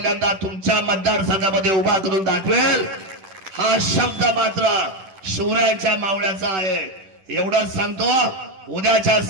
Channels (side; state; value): left; late; 10 ms